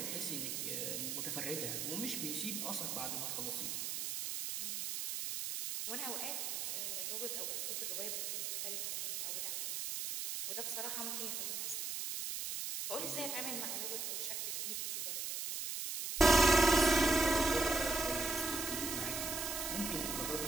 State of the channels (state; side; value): noise; right; hiss, 3 dB below the sound